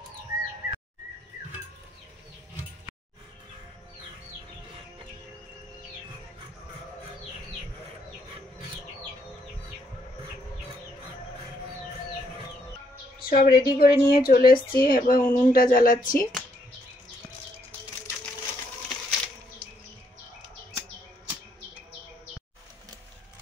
সব রেডি করে নিয়ে চলে এসেছি, এবার উনুনটা জ্বালাচ্ছি।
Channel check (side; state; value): both; normal; correlation 0.73